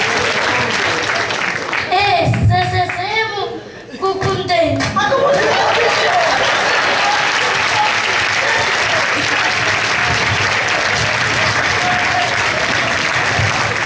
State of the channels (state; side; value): identical; both; correlation 1.00